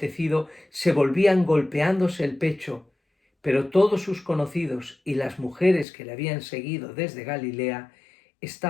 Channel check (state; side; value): drops out; right; at 5.9 s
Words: se volvían golpeándose el pecho. Pero todos sus conocidos y las mujeres que le habían seguido desde Galilea